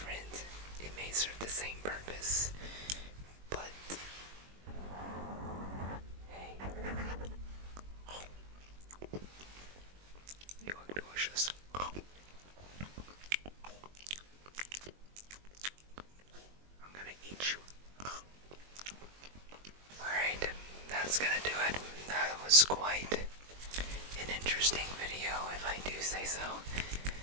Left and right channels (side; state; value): left; late; 21 ms